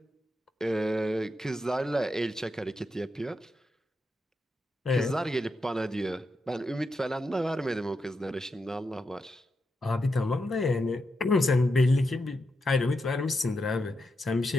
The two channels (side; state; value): both; normal; correlation 0.85